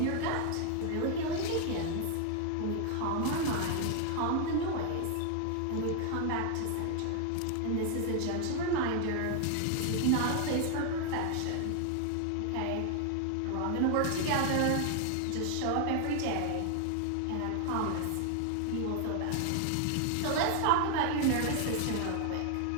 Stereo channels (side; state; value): both; different; correlation 0.00